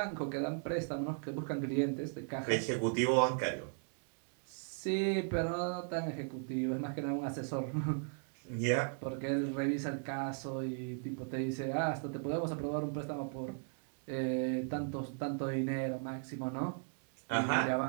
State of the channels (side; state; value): left; silent; 53 dB below the other